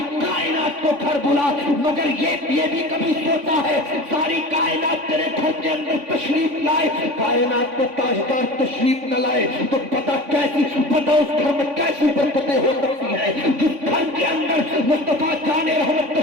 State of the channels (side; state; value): left; late; 3.5 ms